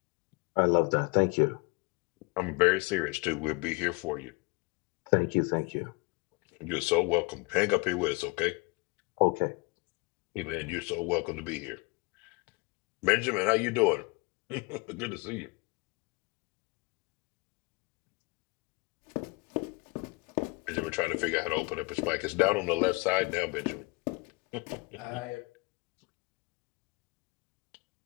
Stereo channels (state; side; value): quieter; right; 28.2 dB